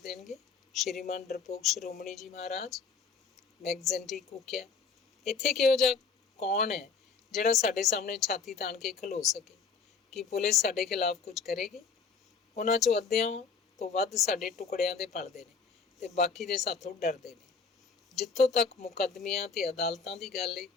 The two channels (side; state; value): right; quieter; 5.3 dB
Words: ਦੇਣਗੇ? ਸ਼੍ਰੀਮਾਨ ਡਰਪੋਕ ਸ਼੍ਰੋਮਣੀ ਜੀ ਮਹਾਰਾਜ, ਮੈਗਜ਼ੈਂਟੀ ਕੂਕਿਆ। ਇੱਥੇ ਕਿਹੋ ਜਿਹਾ ਕੌਣ ਹੈ ਜਿਹੜਾ ਸਾਡੇ ਸਾਹਮਣੇ ਛਾਤੀ ਤਾਣ ਕੇ ਖਲੋ ਸਕੇ? ਕਿ ਪੁਲਿਸ ਸਾਡੇ ਖਿਲਾਫ ਕੁਝ ਕਰੇਗੀ? ਉਹਨਾਂ 'ਚੋਂ ਅੱਧਿਆਂ ਤੋਂ ਵੱਧ ਸਾਡੇ ਟੁਕੜਿਆਂ ਦੇ ਪਲਦੇ ਨੇ ਤੇ ਬਾਕੀ ਦੇ ਸਾਥੋਂ ਡਰਦੇ ਨੇ। ਜਿੱਥੋਂ ਤੱਕ ਮੁਕੱਦਮਿਆਂ ਤੇ ਅਦਾਲਤਾਂ ਦੀ ਗੱਲ ਏ,